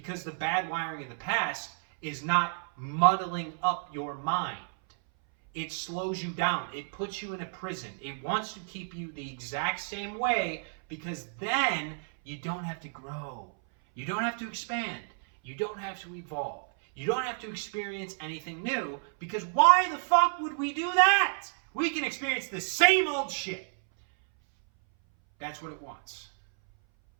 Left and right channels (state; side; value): silent; left; 57 dB below the other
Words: the bad wiring of the past is not muddling up your mind. It slows you down. It puts you in a prison. It wants to keep you the exact same way because then you don't have to grow. You don't have to expand. You don't have to evolve. You don't have to experience anything new because why the fuck would we do that? We can experience the same old shit. That's what it wants.